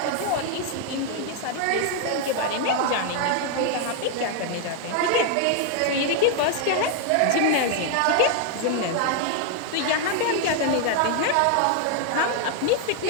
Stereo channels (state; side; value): different; both; correlation 0.00